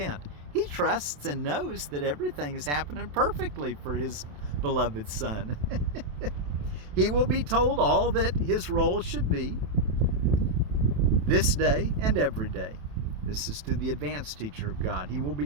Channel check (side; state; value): left; late; 27 ms